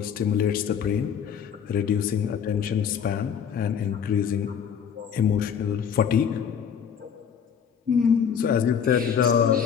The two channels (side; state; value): right; quieter; 7.7 dB